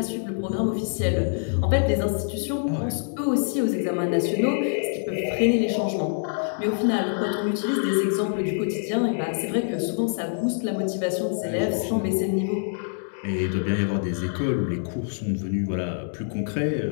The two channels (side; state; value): right; silent; digital silence